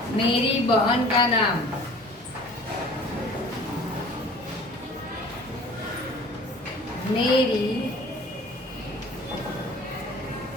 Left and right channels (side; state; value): both; normal; correlation 0.47